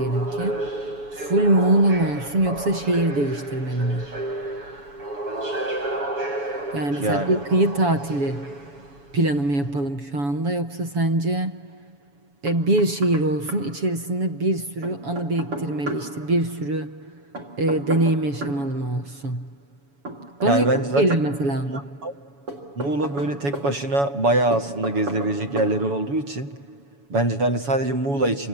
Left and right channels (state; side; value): late; left; 7.1 ms